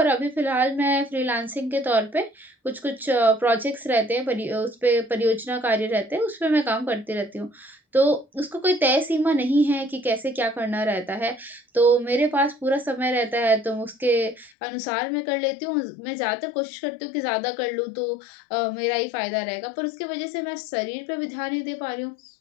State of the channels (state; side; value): drops out; right; at 14.5 s